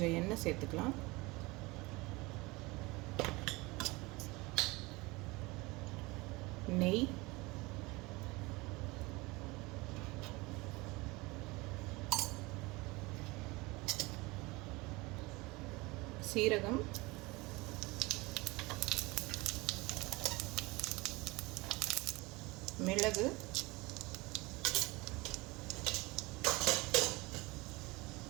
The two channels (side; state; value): left; quieter; 23.4 dB